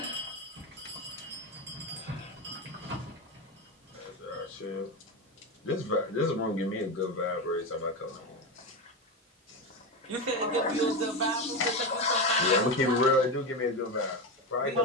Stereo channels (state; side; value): normal; both; correlation 0.16